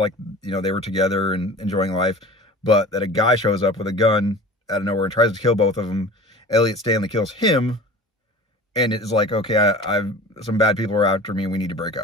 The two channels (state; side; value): normal; both; correlation 0.40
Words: you know, they were together and enjoying life, but that a guy shows up with a gun out of nowhere and tries to kill both of them. Elliot Stanley kills him, and it's like, okay, some bad people are after me, and we need to break